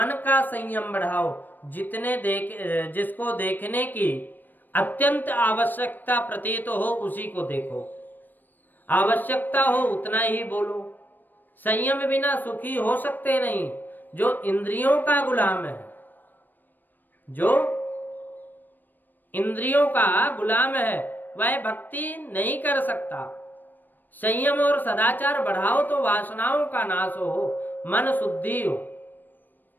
का संयम बढ़ाओ। जिसको देखने की अत्यंत आवश्यकता प्रतीत हो उसी को देखो। आवश्यकता हो उतना ही बोलो। संयम बिना सुखी हो सकते नहीं। जो इंद्रियों का गुलाम है, जो इंद्रियों का गुलाम है, वह भक्ति नहीं कर सकता। संयम और सदाचार बढ़ाओ तो वासनाओं का नाश हो, मन शुद्धि हो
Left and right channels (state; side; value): late; right; 0.090 ms